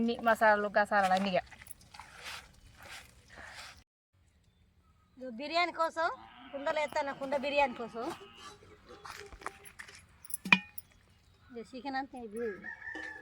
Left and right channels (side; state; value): both; identical; correlation 1.00